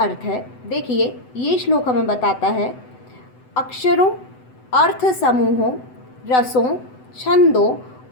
है देखिए। ये श्लोक हमें बताता है अक्षरों, अर्थ समूहों, रसों, छंदों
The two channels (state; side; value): late; right; 7.9 ms